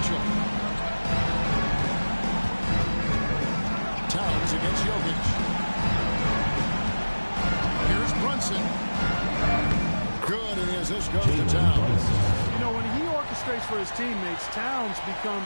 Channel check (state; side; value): inverted; both; correlation -1.00